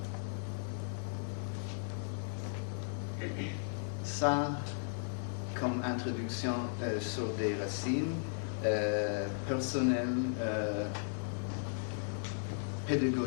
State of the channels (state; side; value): silent; right; digital silence